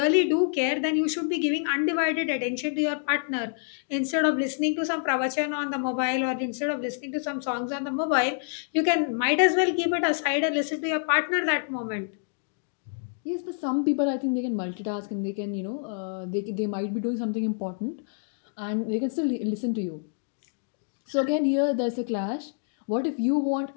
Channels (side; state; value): right; silent; digital silence